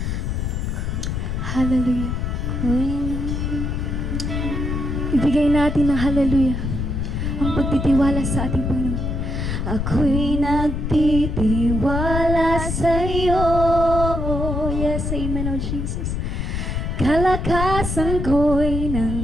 Hallelujah. Ibigay natin ng hallelujah ang pagtitiwala sa ating Panginoon. Ako'y nagtitiwala sa iyo. Yes, amen, oh Jesus. Kalakasan ko'y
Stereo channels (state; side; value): noise; left; rumble, 2 dB below the sound